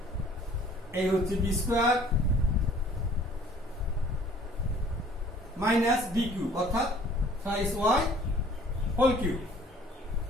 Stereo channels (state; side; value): normal; both; correlation 0.54